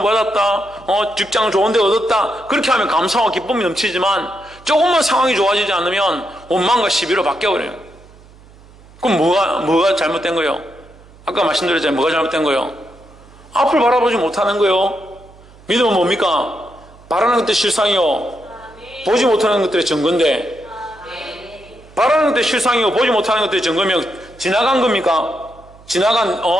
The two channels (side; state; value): right; noise; hum, 24 dB below the sound